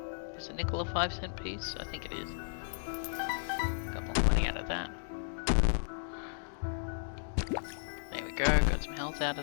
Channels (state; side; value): silent; right; digital silence